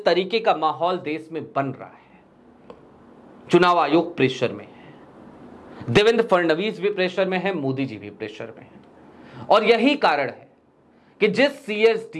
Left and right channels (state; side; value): identical; both; correlation 1.00